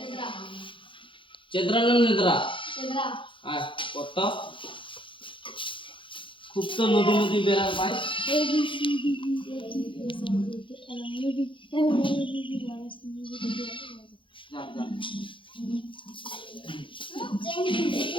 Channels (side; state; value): right; late; 0.25 ms